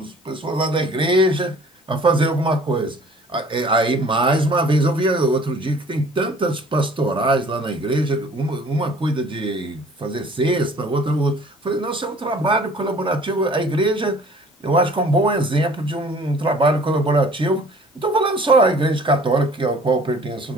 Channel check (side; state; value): both; normal; correlation 0.51